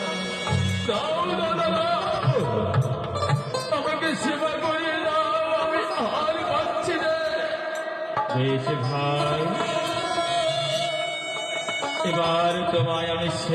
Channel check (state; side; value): identical; both; correlation 1.00